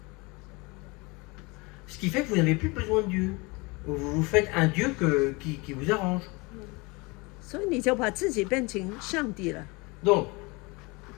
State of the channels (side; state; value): right; quieter; 26.1 dB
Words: Ce qui fait que vous n'avez plus besoin de Dieu. Vous vous faites un Dieu qui vous arrange. 所以你就把自己变成上帝了。 Donc,